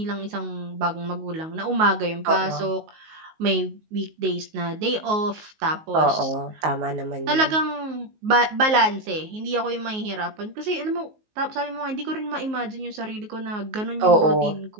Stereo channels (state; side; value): late; left; 19 ms